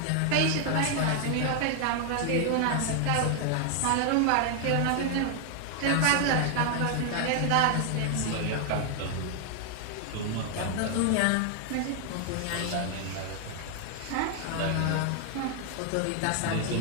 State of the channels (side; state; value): both; different; correlation 0.00